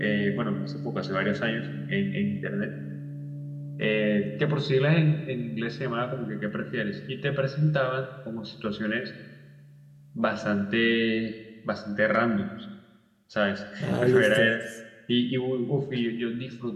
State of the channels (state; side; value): identical; both; correlation 1.00